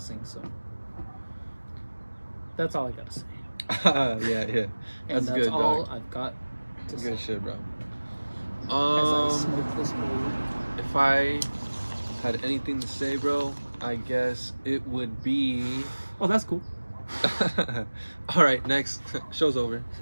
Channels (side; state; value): both; inverted; correlation -1.00